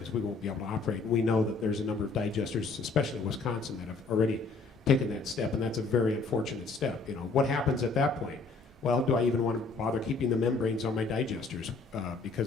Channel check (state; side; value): quieter; right; 4.1 dB